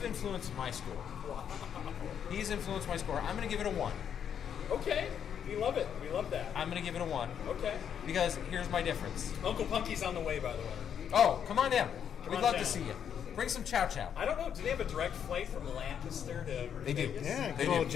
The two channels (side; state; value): right; quieter; 8.4 dB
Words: influenced my score. He's influenced my score. I'm going to give it a 1. Okay. We love it. We love that. I'm going to give it a 1 Okay. because here's my difference. Uncle Punky's on the way, by the way. Oh, come on down. Come We'd on love down. to see you. Bring some chow chow. I don't know. Do they have a direct flight from Lancaster to They do. Vegas? Yeah, They call do.